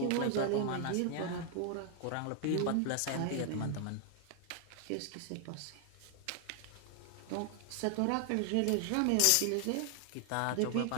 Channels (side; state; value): both; different; correlation 0.00